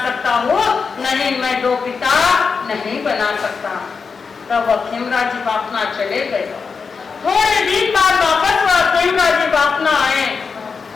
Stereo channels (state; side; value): quieter; right; 5.3 dB